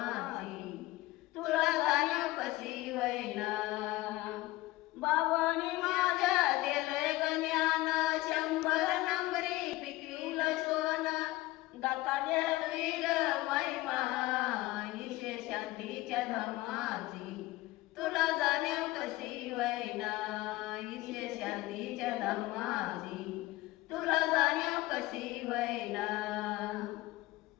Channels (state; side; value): quieter; right; 18.6 dB